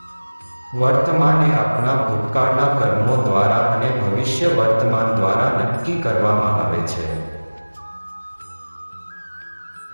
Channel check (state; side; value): inverted; both; correlation -1.00